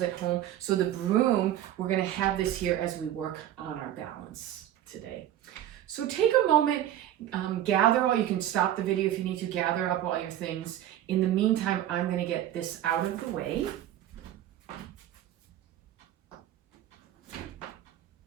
at home, so the broom, we're gonna have this here as we work on our balance today. So take a moment, you can stop the video if you need to, gather up all your things. In the meantime, I'm gonna get this out of the way.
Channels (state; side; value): quieter; left; 12.3 dB